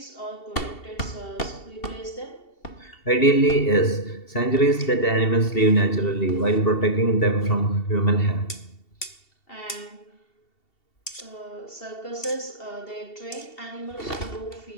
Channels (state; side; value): late; right; 2.7 ms